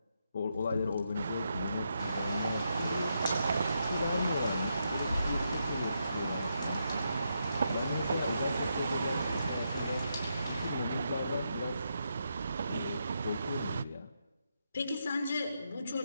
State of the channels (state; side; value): inverted; both; correlation -0.82